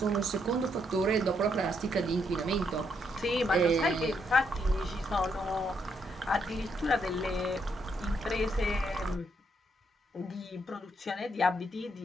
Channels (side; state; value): both; normal; correlation 0.76